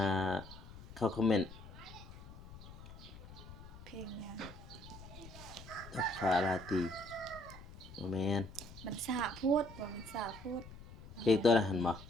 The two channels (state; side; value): noise; left; rumble, 16 dB below the sound